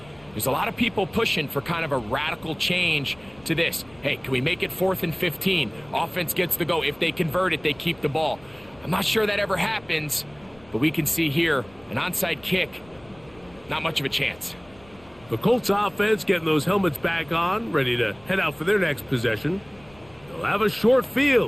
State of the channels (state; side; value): noise; left; rumble, 26 dB below the sound